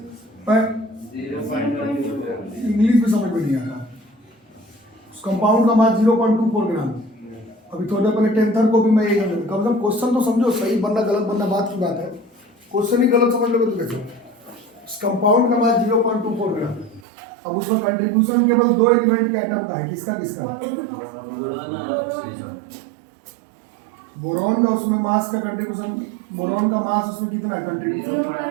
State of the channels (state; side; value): drops out; left; at 17.1 s